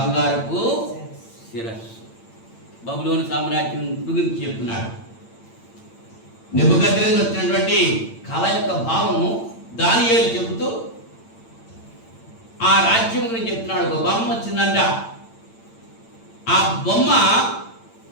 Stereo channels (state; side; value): late; right; 8.9 ms